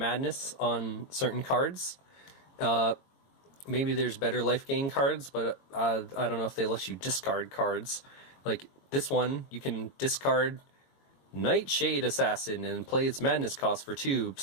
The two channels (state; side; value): late; right; 22 ms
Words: on certain cards. Maybe there's better life gain cards, but I don't know if they let you discard cards. Like this one, you can discard Nightshade Assassin and play its madness cost for 2.